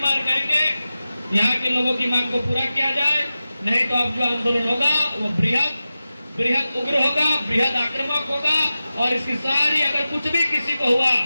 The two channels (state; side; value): inverted; both; correlation -0.94